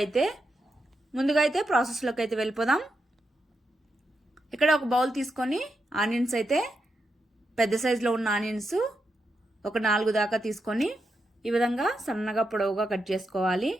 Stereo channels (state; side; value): normal; both; correlation 0.85